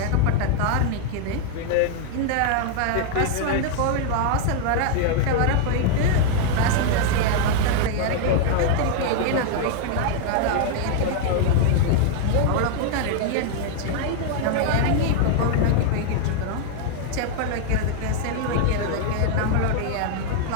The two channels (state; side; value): different; both; correlation 0.00